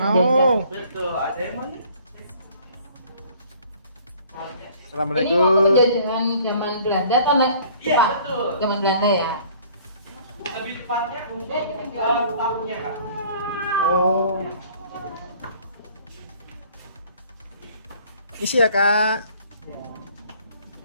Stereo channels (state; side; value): inverted; both; correlation -0.54